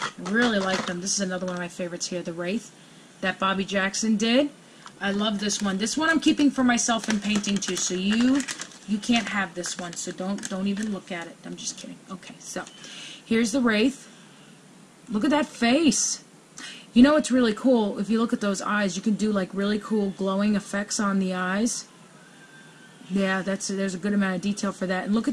Really like them. This is another one of my favorites here, the Wraith that Bobby Jackson did. I love this one. This one I'm keeping for myself and painting too. So you can't have this one. So don't even look at it. I'm just kidding. Okay, so here's the Wraith. Look at that face. You know what's really cool? If you look at those eyes, you can do like really cool glowing effects on the eyes. Yeah, there's a good amount of detail for that. And look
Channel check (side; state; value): both; identical; correlation 1.00